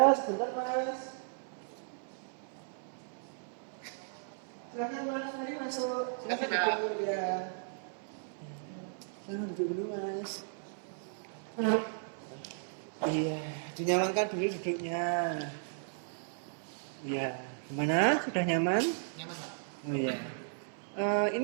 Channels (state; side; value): silent; left; 54 dB below the other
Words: sebentar Mas. Silakan Mas, mari masuk. Silakan duduk ya. Silakan duduk dulu Mas. Iya, dinyamankan dulu duduknya. Iya, gimana? Sudah nyaman? Nyaman Pak? Oh iya.